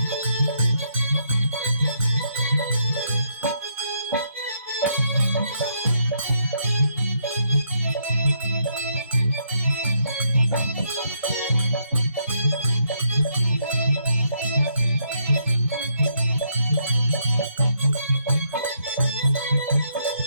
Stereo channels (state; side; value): inverted; both; correlation -0.74